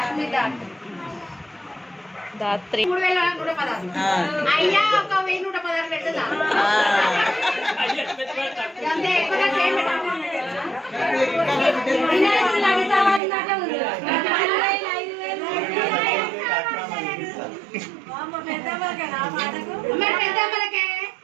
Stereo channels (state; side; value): drops out; left; at 13.2 s